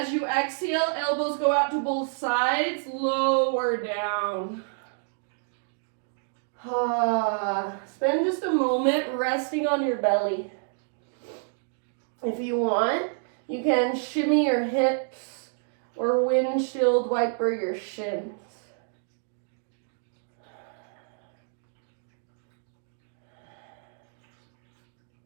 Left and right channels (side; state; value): left; silent; digital silence